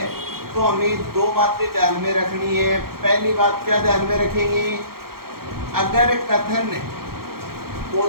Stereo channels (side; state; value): left; late; 0.94 ms